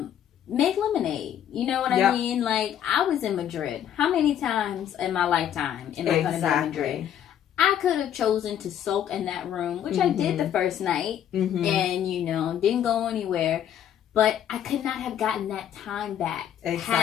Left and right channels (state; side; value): quieter; right; 10.1 dB